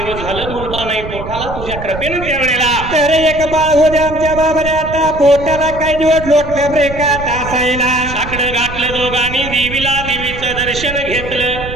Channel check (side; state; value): right; noise; rumble, 10 dB below the sound